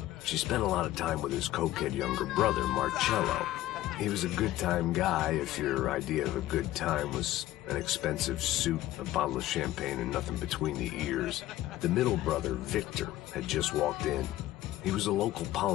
She spent a lot of time with his cokehead younger brother, Marcello. He was a good-time guy if your idea of a good time was an expensive suit, a bottle of champagne, and nothing between the ears. The middle brother, Victor, had just walked in. He was a local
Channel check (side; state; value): right; quieter; 15.2 dB